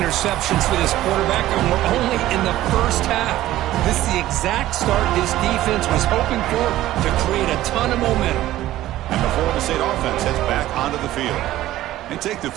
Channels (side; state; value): left; quieter; 14.8 dB